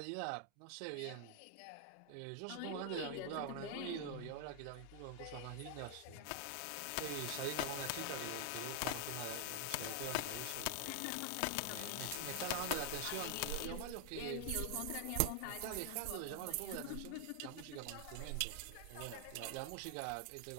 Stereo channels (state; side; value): different; both; correlation 0.00